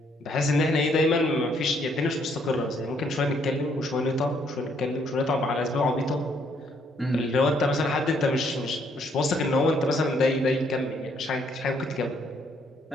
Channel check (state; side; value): normal; both; correlation 0.69